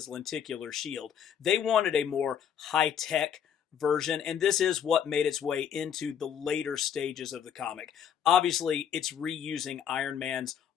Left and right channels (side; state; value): right; quieter; 8.6 dB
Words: lenticular shield. They wanted a more high-tech version, and this is what made its way into the later stages of the comic. Obviously, it's reusing Iron Man's